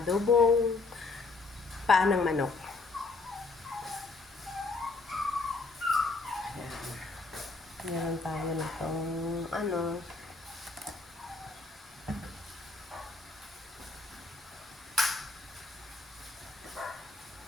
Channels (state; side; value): quieter; right; 3.7 dB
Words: paa ng manok. Meron tayo nitong